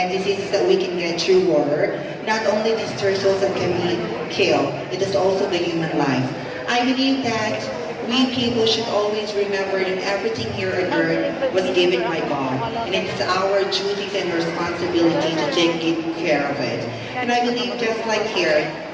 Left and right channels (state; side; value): identical; both; correlation 1.00